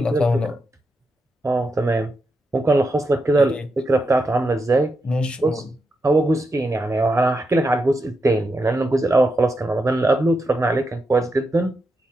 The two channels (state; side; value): normal; both; correlation 0.85